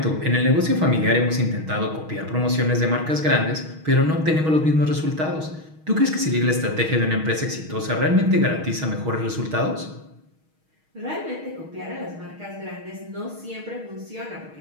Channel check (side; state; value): left; late; 6.4 ms